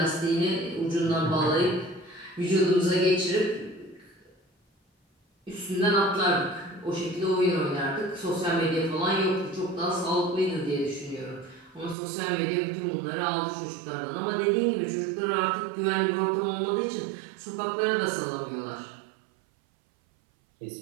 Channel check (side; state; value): left; drops out; at 12.0 s